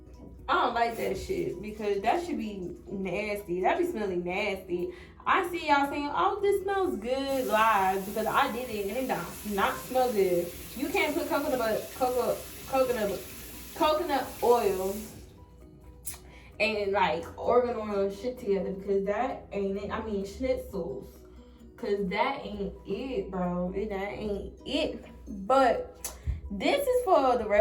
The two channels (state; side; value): identical; both; correlation 1.00